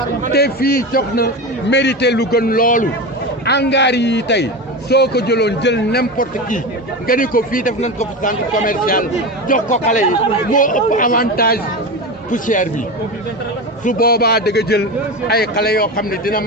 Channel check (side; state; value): both; normal; correlation 0.23